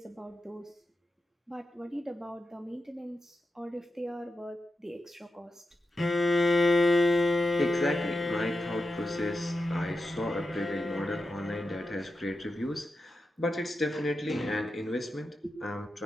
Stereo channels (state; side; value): normal; both; correlation 0.89